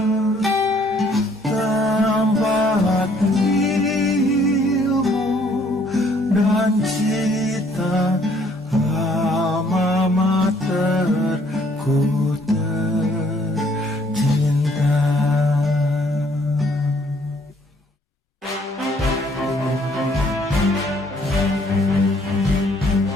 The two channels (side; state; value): both; normal; correlation 0.63